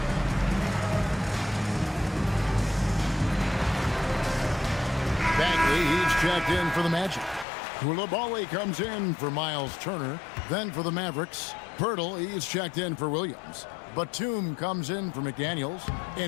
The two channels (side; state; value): right; drops out; at 7.5 s